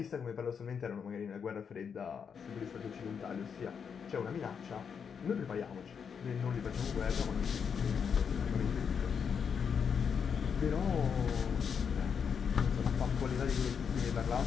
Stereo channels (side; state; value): right; quieter; 6.8 dB